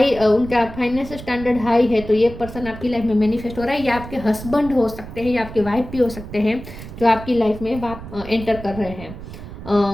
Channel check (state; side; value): noise; right; rumble, 13 dB below the sound